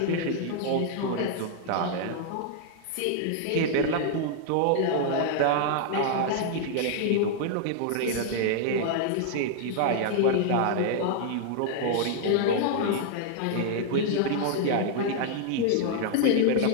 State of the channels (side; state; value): both; different; correlation 0.00